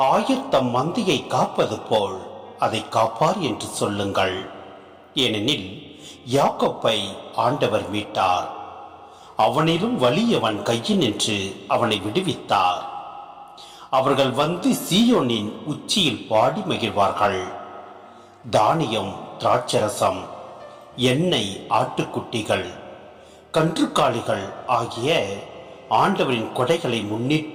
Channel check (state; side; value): identical; both; correlation 1.00